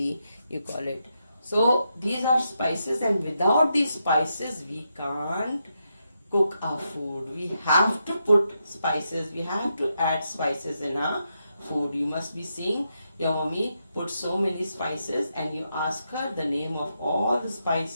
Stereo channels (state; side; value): inverted; both; correlation -0.83